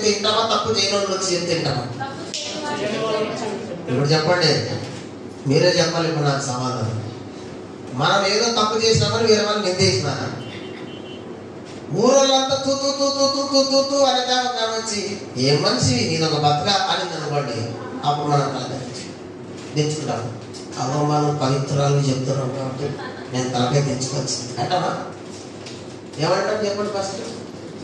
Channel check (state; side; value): identical; both; correlation 1.00